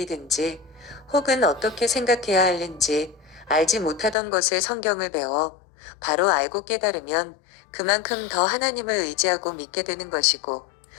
혹은 어떻게 생각해야 하는지 알지 못하던 것을 성경을 배워 바로 알고 깨달으면 그만큼 더 하나님을 의지하고 믿게 되는 것이고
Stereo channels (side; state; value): right; drops out; at 4.2 s